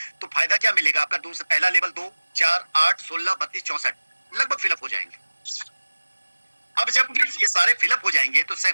तो फायदा क्या मिलेगा आपका? दूसरा पहला लेवल 2, 4, 8, 16, 32, 64 लगभग फिलअप हो जाएंगे। अब जब ये सारे फिलअप हो जाएंगे तो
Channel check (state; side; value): inverted; both; correlation -1.00